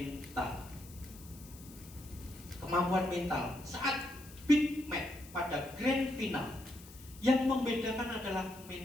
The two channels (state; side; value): noise; left; hiss, 19 dB below the sound